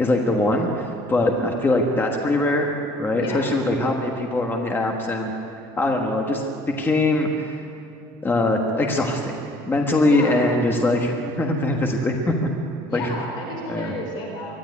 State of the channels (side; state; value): both; normal; correlation 0.57